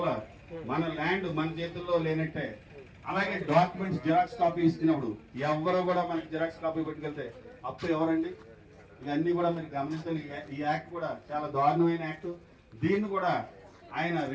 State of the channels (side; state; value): both; identical; correlation 1.00